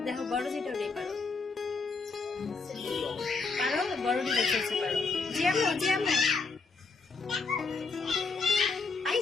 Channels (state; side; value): quieter; right; 4.3 dB